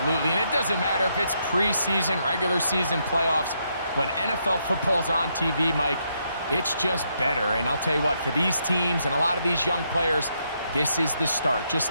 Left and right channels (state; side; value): inverted; both; correlation -0.77